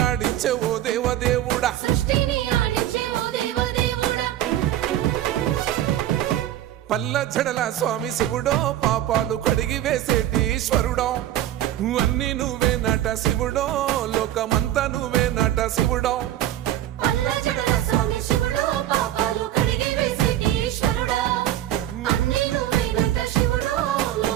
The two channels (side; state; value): left; quieter; 12.8 dB